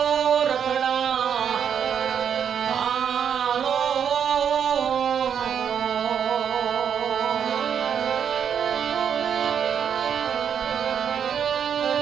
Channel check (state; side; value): quieter; left; 8.0 dB